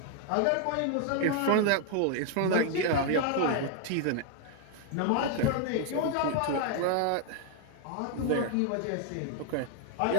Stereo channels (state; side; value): different; both; correlation 0.00